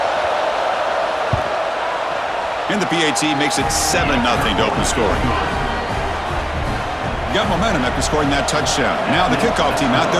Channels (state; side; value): identical; both; correlation 1.00